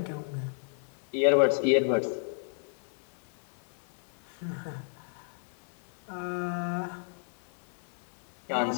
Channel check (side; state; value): right; silent; 56 dB below the other